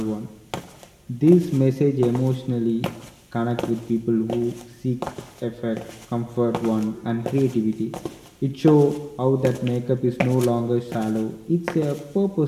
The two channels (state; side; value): identical; both; correlation 1.00